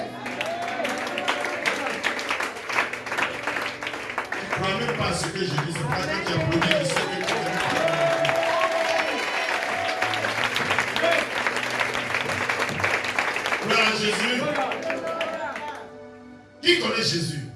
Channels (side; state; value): both; identical; correlation 1.00